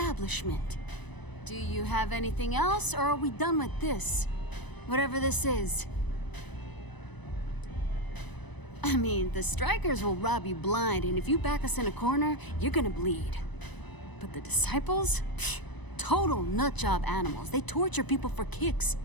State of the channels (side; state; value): right; late; 1.0 ms